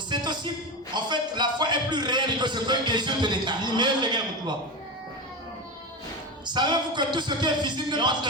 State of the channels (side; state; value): both; normal; correlation 0.20